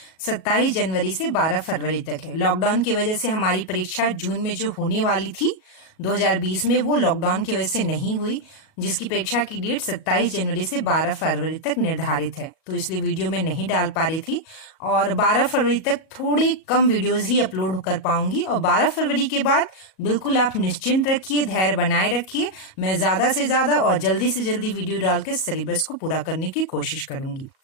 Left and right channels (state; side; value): late; right; 37 ms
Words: 27 जनवरी से 12 फरवरी तक है। लॉकडाउन की वजह से हमारी परीक्षा जून में जो होने वाली थी 2020 में, वो लॉकडाउन की वजह से नहीं हुई, जिसकी परीक्षा की डेट 27 जनवरी से 12 फरवरी तक निर्धारित है। तो इसलिए वीडियो में नहीं डाल पा रही थी और 12 फरवरी तक थोड़ी कम वीडियोस ही अपलोड कर पाऊंगी। और 12 फरवरी के बाद बिल्कुल आप निश्चिंत रखिए, धैर्य बनाए रखिए, मैं ज्यादा से ज्यादा और जल्दी से जल्दी वीडियो डाल के सिलेबस को पूरा करने की कोशिश करूंगी।